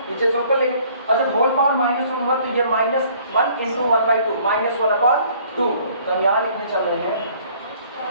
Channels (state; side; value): inverted; both; correlation -0.57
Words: नीचे से ऊपर लेंगे, और जब होल पावर -1 होगा तो ये -1 इंटू 1/2 -1/2। तो हम यहाँ लिखने चल रहे हैं